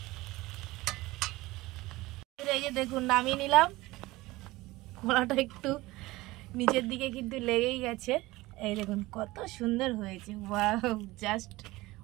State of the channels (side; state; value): left; quieter; 19.6 dB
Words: এই যে দেখুন নামিয়ে নিলাম। কড়াটা একটু নিচের দিকে কিন্তু লেগেই গেছে। এই দেখুন কত সুন্দর হয়েছে, ওয়াও জাস্ট